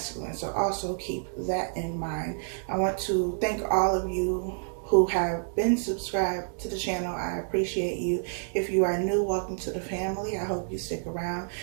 So also keep that in mind. I want to thank all of you who have been subscribed to the channel. I appreciate you. If you are new, welcome to the family. I hope you stick around.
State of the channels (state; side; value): silent; left; digital silence